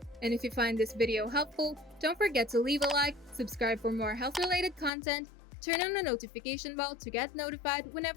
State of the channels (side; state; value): right; drops out; at 4.9 s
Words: And if you find this video helpful, don't forget to leave a like, subscribe for more health-related content, turn on the notification bell to get notified